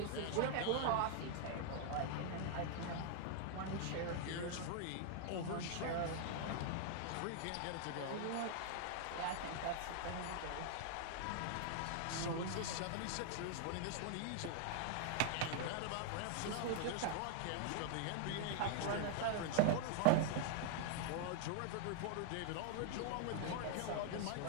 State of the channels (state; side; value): different; both; correlation -0.01